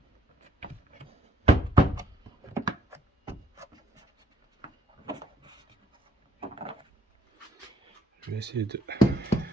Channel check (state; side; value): normal; both; correlation 0.68